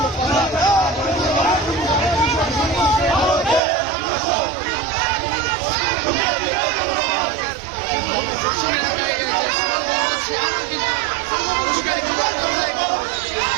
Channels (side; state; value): left; drops out; at 3.6 s